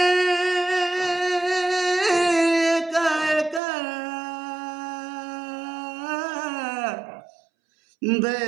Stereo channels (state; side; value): drops out; left; at 3.6 s